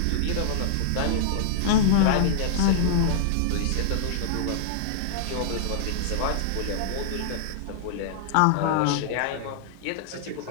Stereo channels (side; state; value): both; different; correlation -0.01